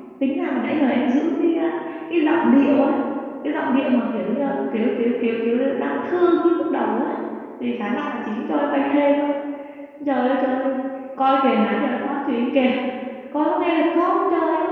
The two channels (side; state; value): both; identical; correlation 1.00